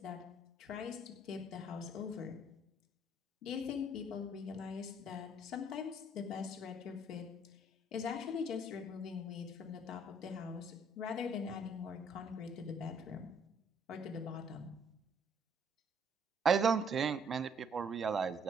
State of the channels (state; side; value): normal; both; correlation 0.64